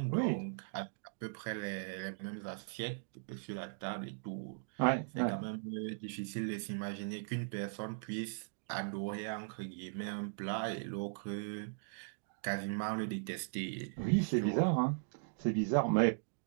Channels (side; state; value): left; silent; digital silence